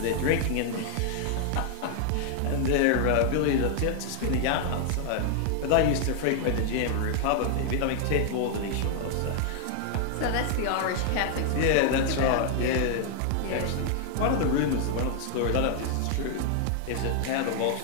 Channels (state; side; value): different; both; correlation 0.00